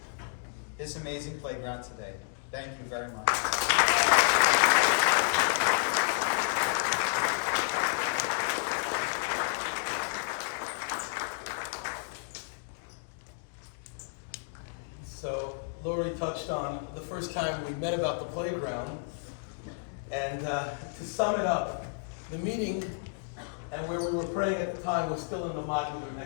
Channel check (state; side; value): silent; right; digital silence